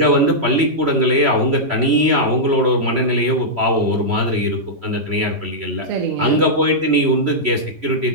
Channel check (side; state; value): left; late; 3.1 ms